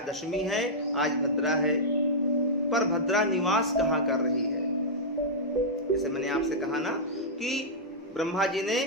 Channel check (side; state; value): both; normal; correlation -0.10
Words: दशमी है, आज भद्रा है, पर भद्रा निवास कहां कर रही है। जैसे मैंने आपसे कहा ना कि ब्रह्मा जी